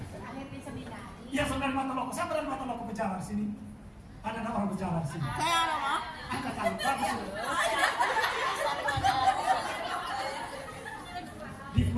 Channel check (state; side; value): identical; both; correlation 1.00